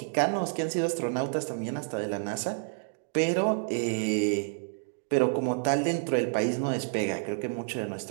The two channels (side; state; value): left; silent; digital silence